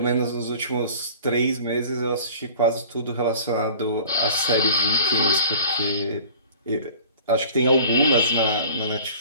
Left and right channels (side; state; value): both; inverted; correlation -0.44